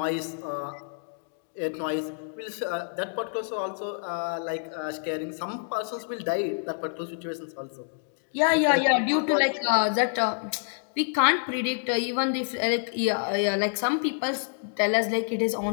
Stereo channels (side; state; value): right; silent; digital silence